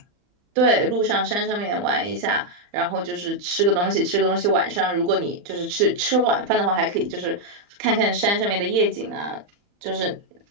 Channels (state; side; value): late; left; 40 ms